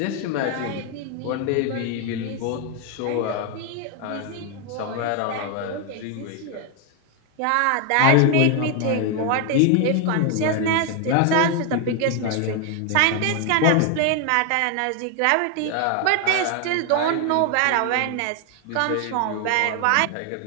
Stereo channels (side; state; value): both; different; correlation 0.01